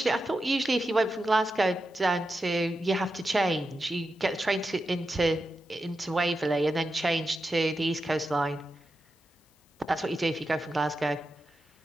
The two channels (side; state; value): both; normal; correlation 0.89